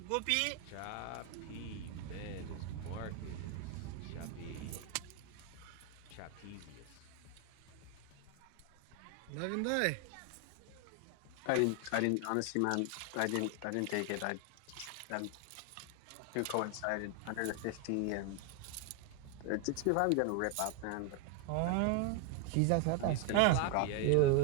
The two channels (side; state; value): both; different; correlation 0.01